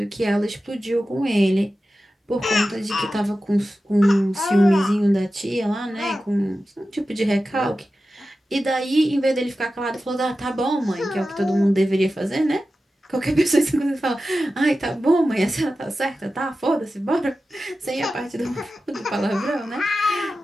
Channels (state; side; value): normal; both; correlation 0.93